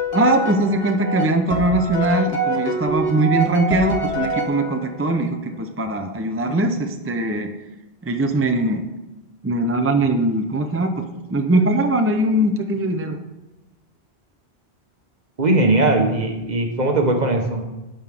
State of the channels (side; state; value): both; normal; correlation 0.16